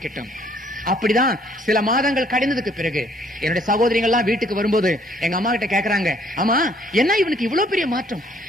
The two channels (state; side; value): normal; both; correlation 0.63